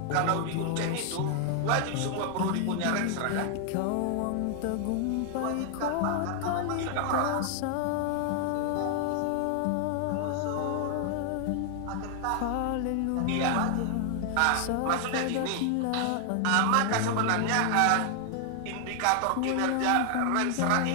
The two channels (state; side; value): different; both; correlation 0.00